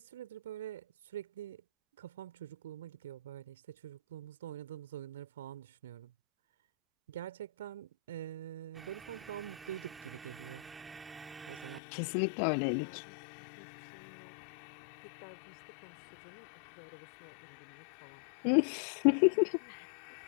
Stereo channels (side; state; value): right; drops out; at 11.8 s